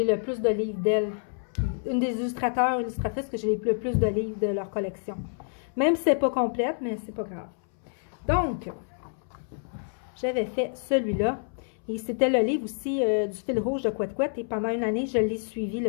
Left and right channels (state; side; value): silent; right; 59 dB below the other